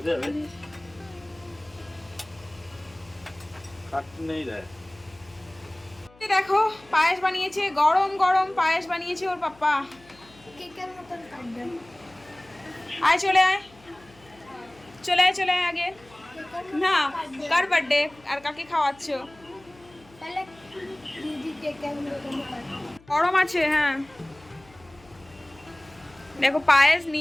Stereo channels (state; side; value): noise; left; hum, 26 dB below the sound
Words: দেখো পায়েস বানিয়েছে, গরম গরম পায়েস বানিয়েছে ওর পাপ্পা। আয় চলে আয়, চলে আয়, চলে আয় আগে। না, কার বার্থডে আর কাকে খাওয়াচ্ছ? গরম আছে, হ্যাঁ। দেখো পায়েস